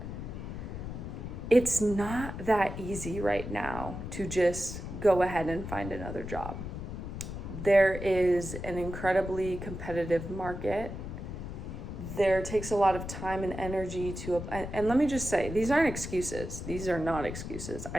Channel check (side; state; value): left; noise; rumble, 7 dB below the sound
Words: it's not that easy right now to just go ahead and find another job. There is an incredibly competitive market. There takes a lot of time and energy and let me just say, these aren't excuses. These are not excuses.